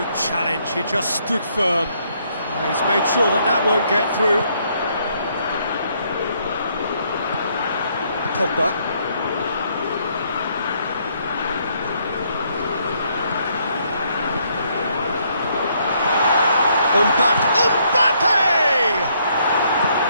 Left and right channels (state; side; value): inverted; both; correlation -0.70